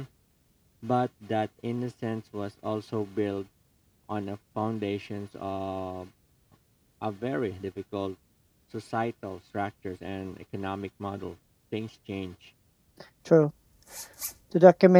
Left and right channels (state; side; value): identical; both; correlation 1.00